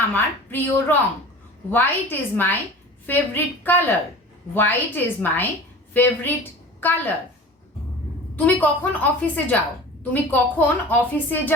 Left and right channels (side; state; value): both; normal; correlation 0.38